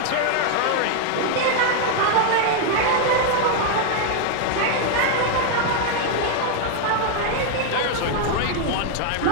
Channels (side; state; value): both; different; correlation 0.00